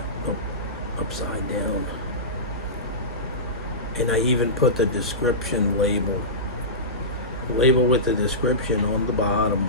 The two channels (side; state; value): both; normal; correlation -0.19